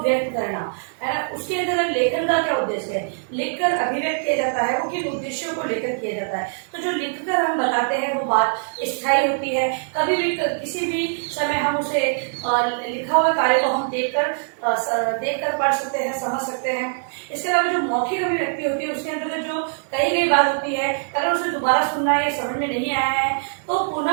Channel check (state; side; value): silent; left; digital silence